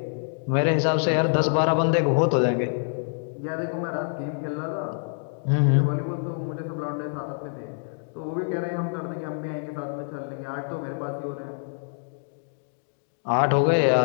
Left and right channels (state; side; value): silent; right; digital silence